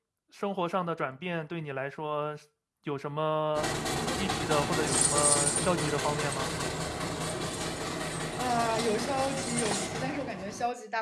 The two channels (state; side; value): identical; both; correlation 1.00